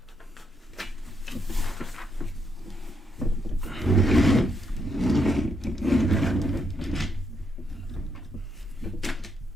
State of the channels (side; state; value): both; normal; correlation 0.77